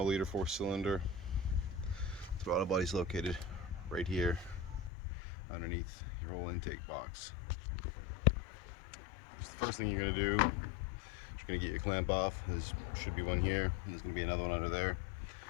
liter 4-cylinder. Throttle body is located right here underneath your whole intake box. So the first thing you're going to do is you're going to get your clamp off. There should be one here, and there's going to be another one under there.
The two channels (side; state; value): right; drops out; at 4.9 s